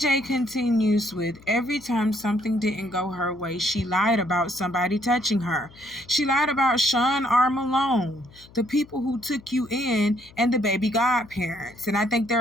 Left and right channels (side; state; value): left; noise; hum, 24 dB below the sound